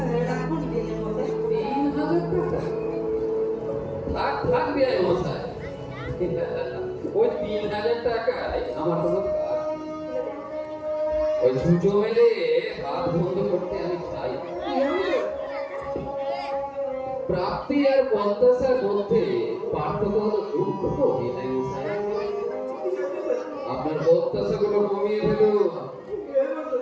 রাখুন বিয়ে মশাই। 3,000 টাকা? থাক থাক বিয়াই মশাই, ওই 3,000 টাকায় আমার কোনো কাজ নেই। ওই ছুঁচো মেলে হাত বন্ধ করতে আমি চাই। প্রাপ্তি আর প্রত্যাশার মধ্যে পার্থক্য হলো দুঃখ, বিনয় মশাই। আপনার প্রত্যাশাগুলো কমিয়ে ফেলুন,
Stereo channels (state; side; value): identical; both; correlation 1.00